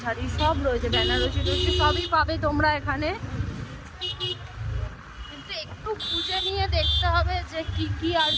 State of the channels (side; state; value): both; identical; correlation 1.00